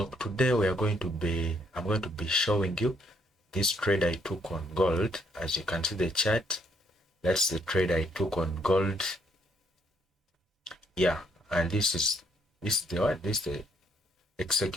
today I'm going to be showing you this trade I took on gold. As you can see the chart, that's the trade I took on gold. Yeah, and this is the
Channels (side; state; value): both; normal; correlation 0.69